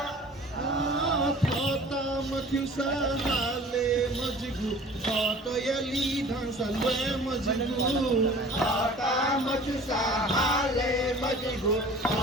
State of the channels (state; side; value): normal; both; correlation 0.45